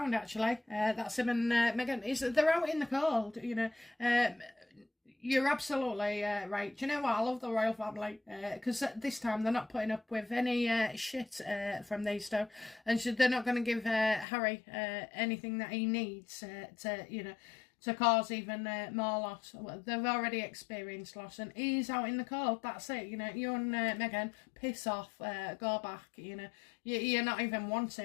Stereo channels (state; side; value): drops out; right; at 14.2 s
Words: actually. That's him and Meghan. They're out in the cold, you know. You're absolutely right. Do you know what? I love the royal family because this time they're not putting up with any shit from these two, and so they're not going to give Harry anything that he needs to, you know, to cause even more loss. They've already experienced loss, and he's out in the cold. That's it. You know, you and Meghan, piss off, go back. You know, you're not even